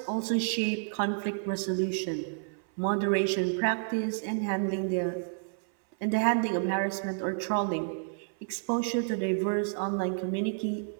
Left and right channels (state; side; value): silent; left; 58 dB below the other